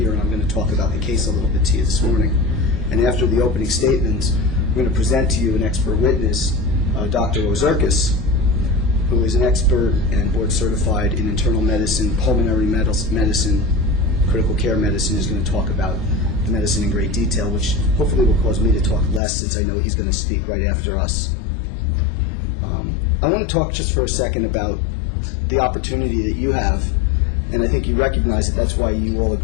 and I'm going to talk about the case a little bit to you this morning. And after the opening statement, we're going to present to you an expert witness, Dr. Ozerkis, who is an expert and board certified in internal medicine, pulmonary medicine, critical care medicine, is going to talk about the medicine in great detail, which hopefully will cause me to talk less since I know he's going to speak right after us. I want to talk just for a second about the opportunity that you have, and I think you recognize that that's why you all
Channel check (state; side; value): drops out; right; at 19.2 s